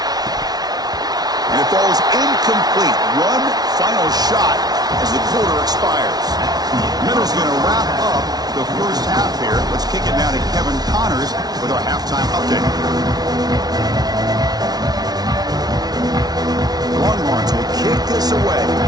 And it falls incomplete. One final shot as the quarter expires. Middle's going to wrap up the first half here. Let's kick it now to Kevin Connors with our halftime update. Longhorns will kick this away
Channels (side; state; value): left; late; 0.19 ms